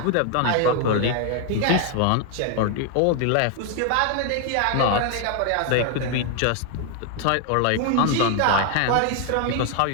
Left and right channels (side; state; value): both; different; correlation 0.00